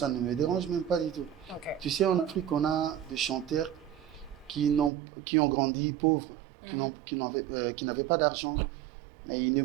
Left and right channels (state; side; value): drops out; left; at 4.9 s